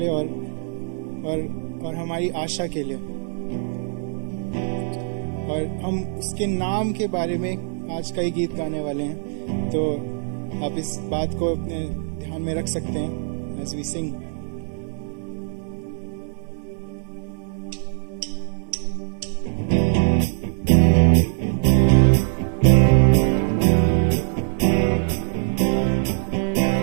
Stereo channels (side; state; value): left; silent; 61 dB below the other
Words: और हमारी आशा के लिए। और हम उसके नाम के बारे में आज कई गीत गाने वाले हैं, तो आप इस बात को अपने ध्यान में रख सकते हैं as we sing।